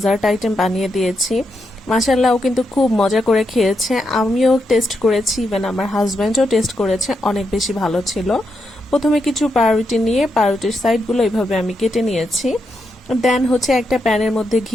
আইটেম বানিয়ে দিয়েছি। মাশাআল্লাহ, ও কিন্তু খুব মজা করে খেয়েছে, আমিও টেস্ট করেছি, ইভেন আমার হাজব্যান্ডও টেস্ট করেছে, অনেক বেশি ভালো ছিল। প্রথমে কিছু পাউরুটি নিয়ে পাউরুটির সাইডগুলো এইভাবে আমি কেটে নিয়েছি। দেন একটা প্যানের মধ্যে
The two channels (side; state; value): both; normal; correlation 0.83